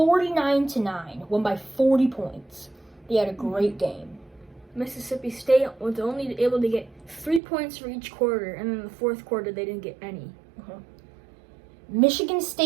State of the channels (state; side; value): drops out; left; at 7.4 s